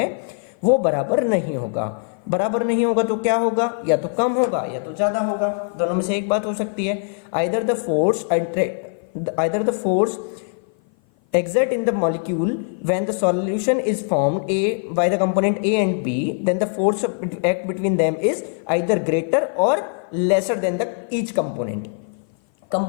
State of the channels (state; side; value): silent; right; 56 dB below the other